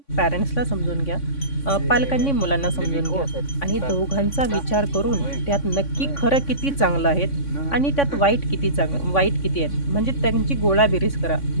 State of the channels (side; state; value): right; late; 3.6 ms